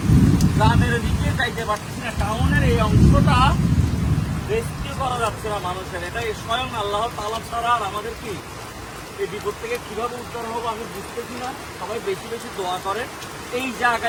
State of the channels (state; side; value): identical; both; correlation 1.00